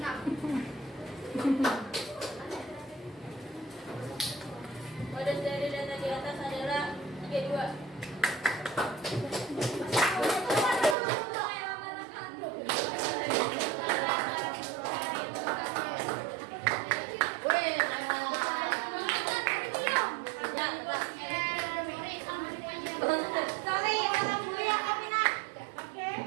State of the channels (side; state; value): left; drops out; at 11.0 s